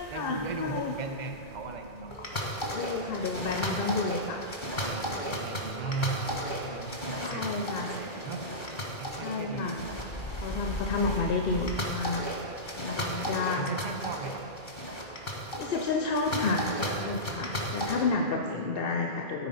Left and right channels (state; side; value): late; right; 2.3 ms